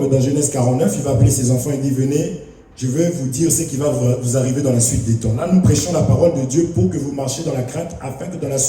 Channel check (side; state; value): both; identical; correlation 1.00